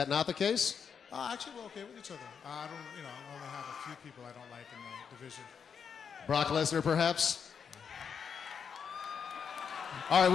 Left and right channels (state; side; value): quieter; right; 6.8 dB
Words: not the case? Actually, we're okay with each other. I don't, I only have a few people I don't like in the division. Brock Lesnar, perhaps? All